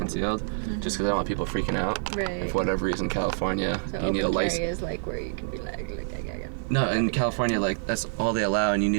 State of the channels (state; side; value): silent; left; digital silence